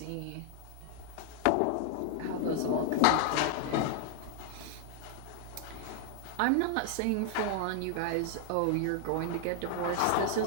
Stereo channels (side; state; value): both; different; correlation 0.00